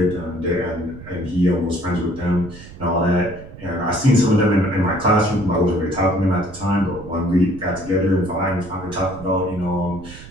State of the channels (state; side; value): noise; right; rumble, 16 dB below the sound